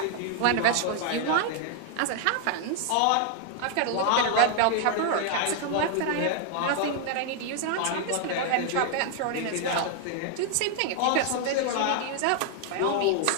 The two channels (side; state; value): both; different; correlation 0.00